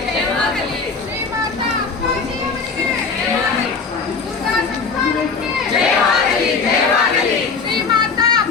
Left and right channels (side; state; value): right; quieter; 5.0 dB